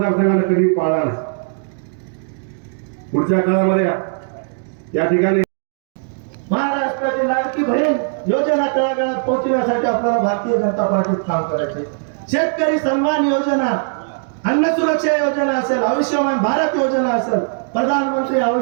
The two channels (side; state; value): left; silent; digital silence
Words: कधी पाळला नाही. पुढच्या काळामध्ये या ठिकाणी महाराष्ट्राची लाडकी बहीण योजना तळागाळात पोहोचण्यासाठी आपल्याला भारतीय जनता पार्टीत काम करायचे. शेतकरी सन्मान योजना, अन्न सुरक्षा योजना असेल, आयुष्यमान भारत योजना असेल, प्रधानमंत्री